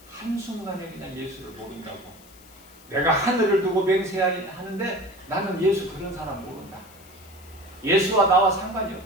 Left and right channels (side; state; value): left; noise; hiss, 24 dB below the sound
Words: 한순간에 그냥 예수를 모른다고. 내가 하늘을 두고 맹세하는데 나는 예수 그런 사람 모른다. 예수와 나와 상관이